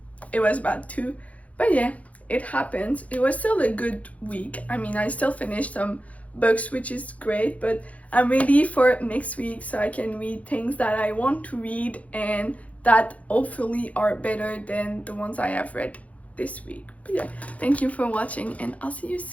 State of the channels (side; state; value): right; late; 0.067 ms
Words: it was bad too. But yeah, it happens. It was still a good week. I mean, I still finished some books, which is great, but I'm ready for next week so I can read things that I want to read and that hopefully are better than the ones I have read this week. But yeah, thank you for watching and I'll see you